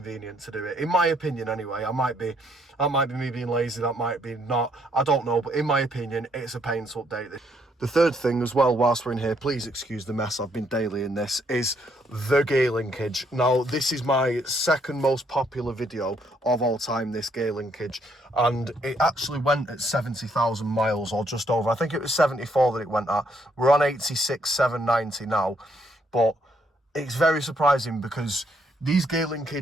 to do it. In my opinion, anyway. That might be me being lazy, that might be not. I don't know, but in my opinion, it's a pain to update this. The third thing as well, whilst we're in here, please excuse the mess, I've been daily in this, is the gear linkage. Now, this is my second most popular video of all time, this gear linkage, and it actually went at 70,000 miles or just over. I think it was 74 that it went at. We're on 86,790 now, but it's very surprising because these gear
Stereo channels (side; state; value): both; normal; correlation 0.71